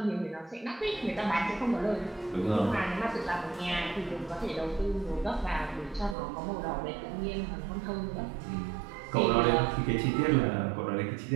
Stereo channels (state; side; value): drops out; left; at 6.2 s